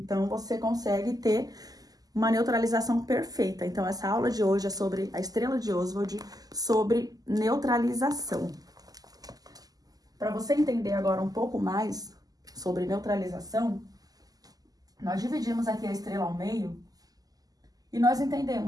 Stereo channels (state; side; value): late; left; 0.18 ms